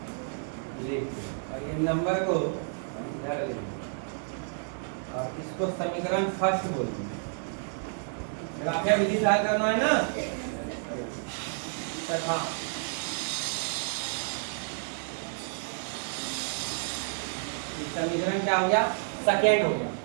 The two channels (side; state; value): left; silent; digital silence